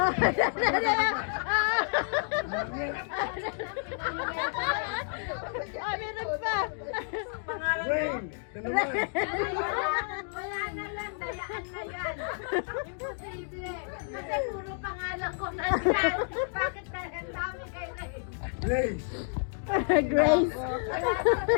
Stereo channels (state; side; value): silent; right; 57 dB below the other